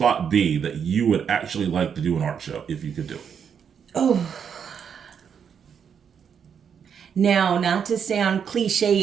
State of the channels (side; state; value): left; quieter; 7.4 dB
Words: be that you would actually like to do an art show if you could do it? Oh. Now, not to sound